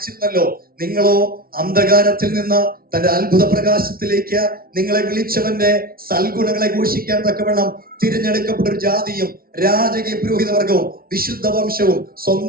നിങ്ങളോ അന്ധകാരത്തിൽ നിന്ന് തന്റെ അത്ഭുത പ്രകാശത്തിലേക്ക് നിങ്ങളെ വിളിച്ചവന്റെ സൽഗുണങ്ങളെ ഘോഷിക്കാൻ തക്കവണ്ണം തിരഞ്ഞെടുക്കപ്പെട്ട ഒരു ജാതിയും രാജകീയ പുരോഹിതവർഗവും വിശുദ്ധ വംശവും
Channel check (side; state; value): left; late; 0.43 ms